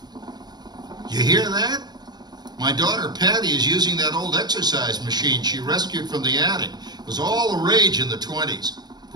You hear that? My daughter Patty is using that old exercise machine she rescued from the attic. It was all the rage in the 20s.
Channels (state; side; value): late; left; 0.20 ms